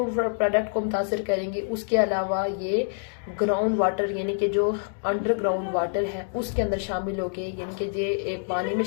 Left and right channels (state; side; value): silent; right; digital silence